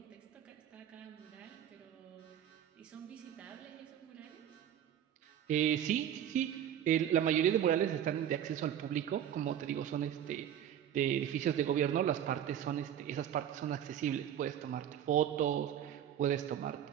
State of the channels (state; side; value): quieter; left; 10.1 dB